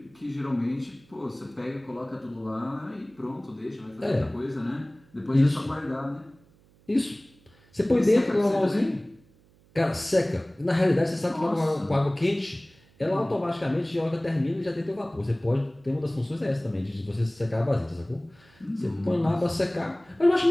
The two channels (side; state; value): right; noise; hum, 30 dB below the sound